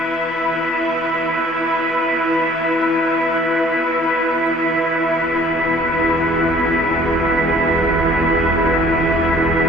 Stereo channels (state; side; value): normal; both; correlation 0.56